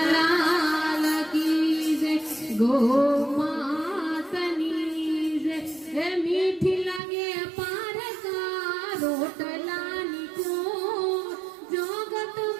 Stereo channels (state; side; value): drops out; left; at 7.0 s